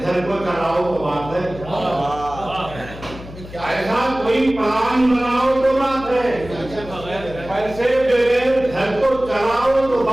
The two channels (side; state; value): left; noise; hum, 15 dB below the sound